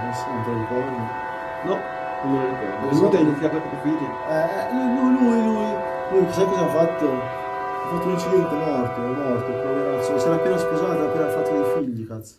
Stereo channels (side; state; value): both; identical; correlation 1.00